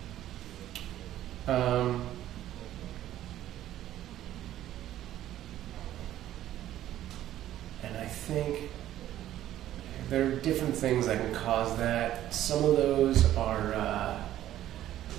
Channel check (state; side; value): quieter; left; 12.9 dB